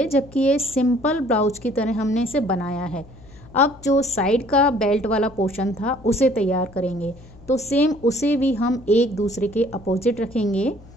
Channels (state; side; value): noise; left; hum, 22 dB below the sound